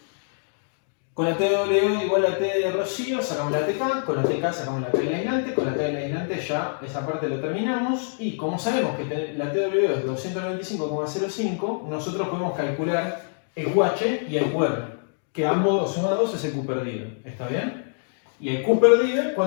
Con la TWO igual a T de rocío, sacamos la TK. Con la TK sacamos la K del aislante. Con la K del aislante ya esa parte lo terminamos. Y como sabemos que la TWO es 295,05, nosotros podemos calcular el QH y el QR, que ambos sumados es el Q perdido, ¿está bien? Y el Q perdido,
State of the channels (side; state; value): right; silent; digital silence